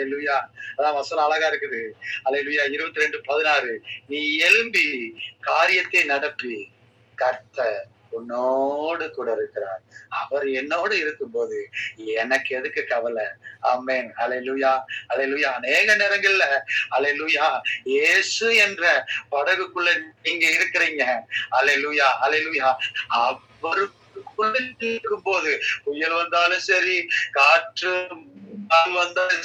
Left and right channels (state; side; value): identical; both; correlation 1.00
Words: அதான் வசனம் அழகா இருக்குது. அல்லேலூயா. 22:16 நீ எழும்பி காரியத்தை நடப்பி, கர்த்தர் உன்னோடு கூட இருக்கிறார். அவர் என்னோடு இருக்கும்போது எனக்கு எதுக்கு கவலை? ஆமென். ஹல்லேலூயா. ஹல்லேலூயா. அநேக நேரங்கள்ல ஹல்லேலூயா இயேசு என்ற படகுக்குள்ள நீங்க இருக்கிறீங்க. ஹல்லேலூயா. ஹல்லேலூயா. அவருக்குள்ள இருக்கும்போது புயல் வந்தாலும் சரி, காற்று